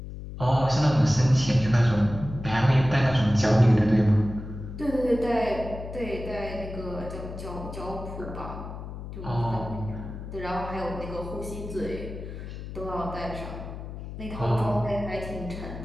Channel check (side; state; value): left; noise; hum, 10 dB below the sound